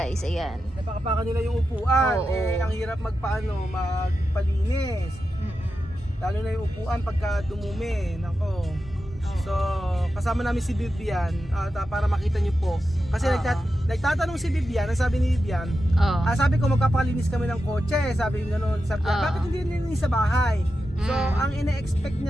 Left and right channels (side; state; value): both; normal; correlation 0.90